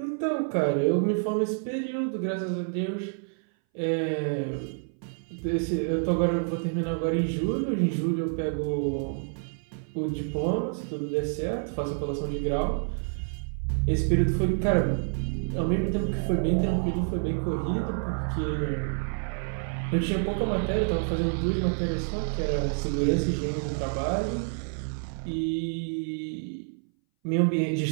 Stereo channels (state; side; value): silent; left; 59 dB below the other